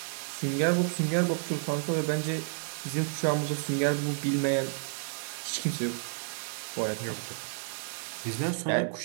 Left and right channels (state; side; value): silent; left; 57 dB below the other